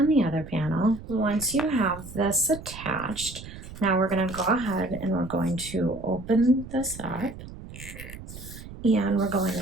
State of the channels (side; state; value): right; noise; rumble, 13 dB below the sound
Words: the other panel. Once you have this attached, Now we're going to go ahead and we're going to open this up, and we're going